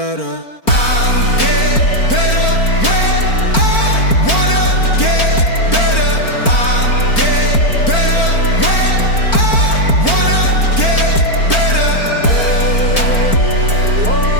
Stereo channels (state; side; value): late; right; 4.4 ms